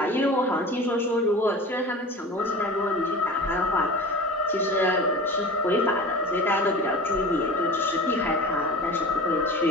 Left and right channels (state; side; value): normal; both; correlation 0.36